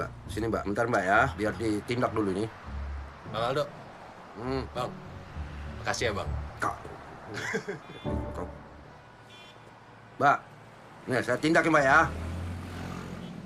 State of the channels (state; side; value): identical; both; correlation 1.00